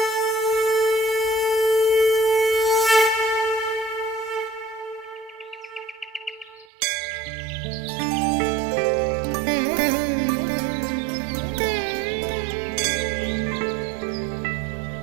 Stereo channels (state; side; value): drops out; left; at 6.7 s